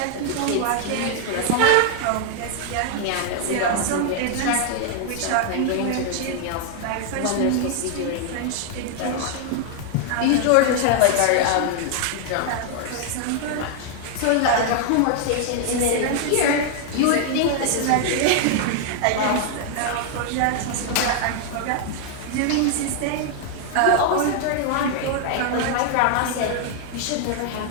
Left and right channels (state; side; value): different; both; correlation 0.00